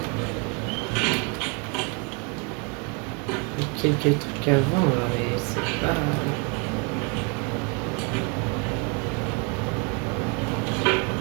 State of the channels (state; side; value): quieter; left; 32.9 dB